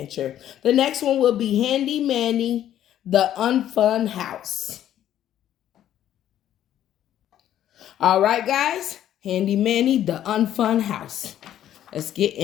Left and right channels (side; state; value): right; quieter; 11.4 dB